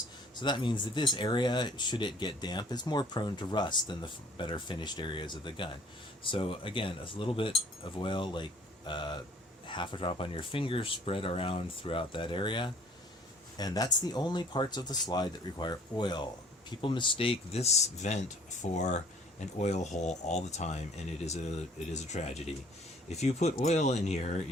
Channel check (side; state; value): both; normal; correlation 0.55